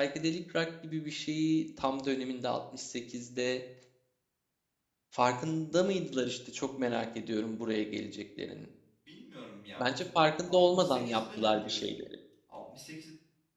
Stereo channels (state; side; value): identical; both; correlation 1.00